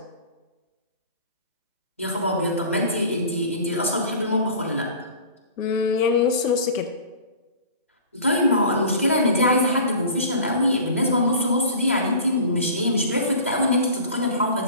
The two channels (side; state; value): both; inverted; correlation -0.41